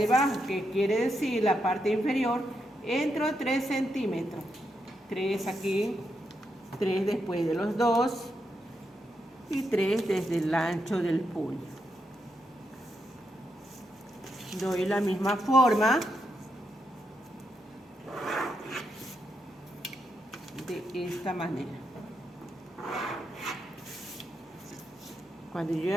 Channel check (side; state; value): both; normal; correlation 0.82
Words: abajo, que quiere decir la parte inferior. Entro 3 centímetros. 3 aquí, 3 después de los 2 y 3 desde el ancho del puño. Doy la misma forma de esta manera. Cuando yo